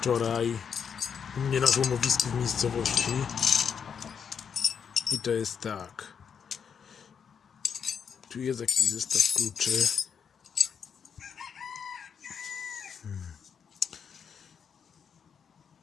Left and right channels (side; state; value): right; quieter; 7.0 dB